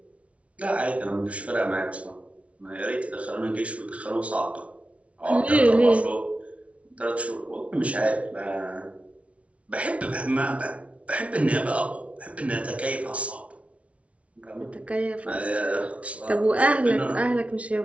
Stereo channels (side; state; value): left; late; 0.064 ms